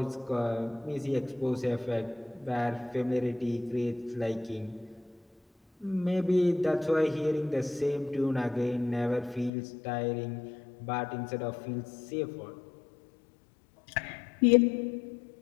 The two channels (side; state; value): right; drops out; at 9.5 s